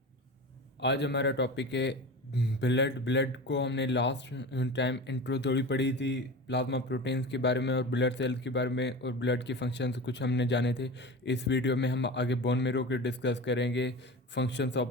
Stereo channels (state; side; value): normal; both; correlation 0.30